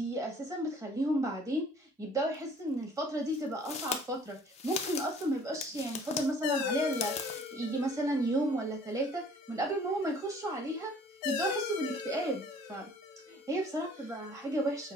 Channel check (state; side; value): normal; both; correlation 0.54